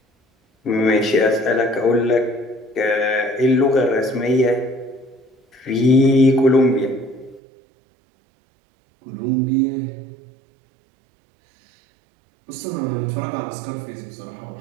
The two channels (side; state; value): left; drops out; at 7.4 s